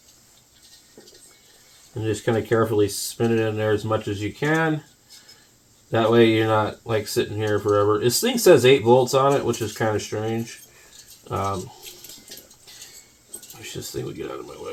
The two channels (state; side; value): identical; both; correlation 1.00